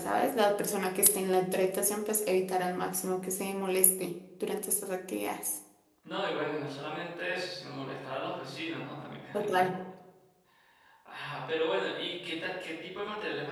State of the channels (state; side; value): identical; both; correlation 1.00